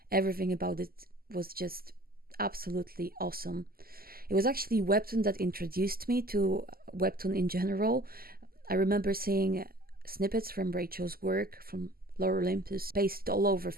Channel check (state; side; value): late; left; 0.43 ms